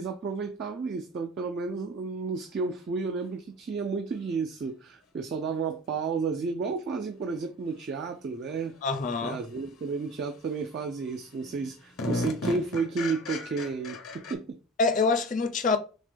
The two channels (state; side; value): normal; both; correlation 0.36